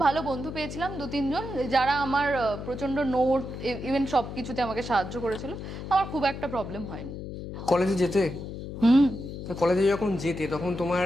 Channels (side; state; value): left; noise; hum, 8 dB below the sound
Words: ভালো বন্ধু পেয়েছিলাম 2-3 জন, যারা আমার প্রচণ্ড নোট ইভেন সব কিছুতে আমাকে সাহায্য করেছিল, আমার খুব একটা প্রবলেম হয়নি। কলেজে যেতে? হুম। কলেজে যখন যেতে তখন তোমার